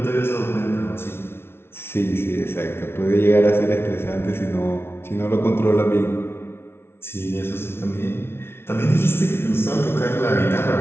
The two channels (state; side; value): late; right; 0.12 ms